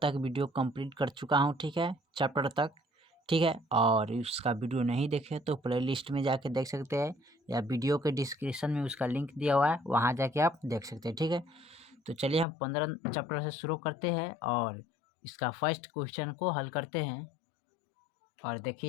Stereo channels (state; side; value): drops out; right; at 12.5 s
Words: वीडियो कंप्लीट कर चुका हूं। ठीक है, चैप्टर तक। ठीक है, और उसका वीडियो नहीं देखे तो प्ले लिस्ट में जाके देख सकते हैं, या वीडियो के डिस्क्रिप्शन में उसका लिंक दिया हुआ है, वहाँ जाके आप देख सकते हैं। ठीक है, तो चलिए हम 15 चैप्टर से शुरू करते हैं और इसका फर्स्ट क्वेश्चन को हल करते हैं। और